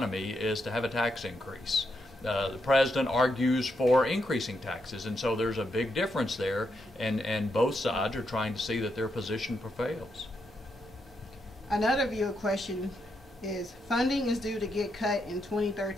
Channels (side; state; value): both; normal; correlation 0.81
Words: is to have a tax increase. The President argues for increasing taxes, and so there's a big difference there, and both sides are trying to see that their position prevails. Another viewer question is, funding is due to get cut in